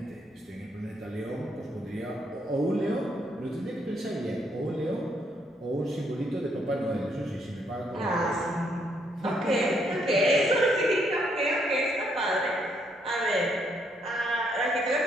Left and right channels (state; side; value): normal; both; correlation 0.73